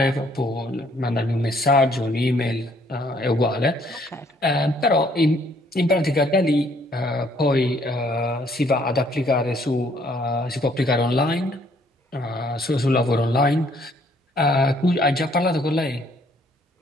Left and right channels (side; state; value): both; normal; correlation 0.65